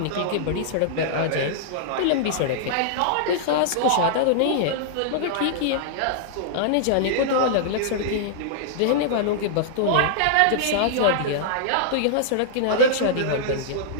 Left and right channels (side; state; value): both; different; correlation -0.01